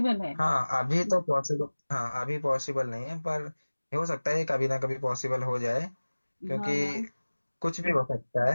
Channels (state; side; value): inverted; both; correlation -1.00